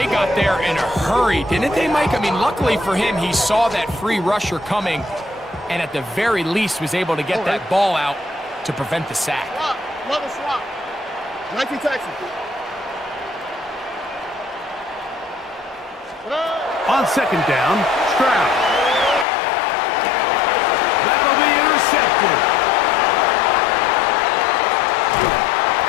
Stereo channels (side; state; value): right; drops out; at 19.2 s